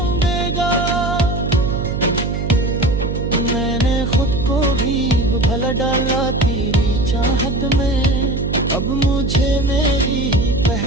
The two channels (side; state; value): right; noise; hum, 3 dB below the sound